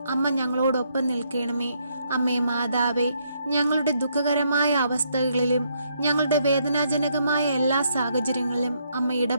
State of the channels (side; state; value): both; inverted; correlation -0.73